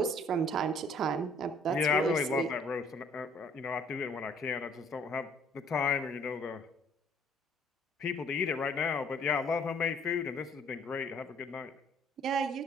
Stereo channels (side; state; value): both; normal; correlation 0.59